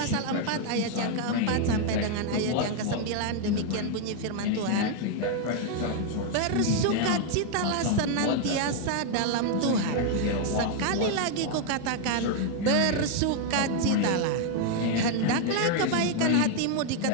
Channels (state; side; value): different; both; correlation 0.00